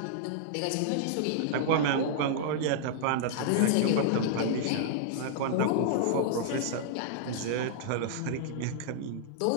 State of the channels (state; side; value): different; both; correlation -0.01